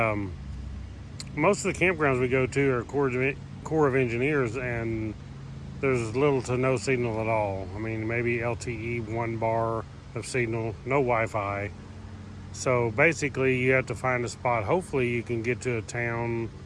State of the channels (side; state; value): both; identical; correlation 1.00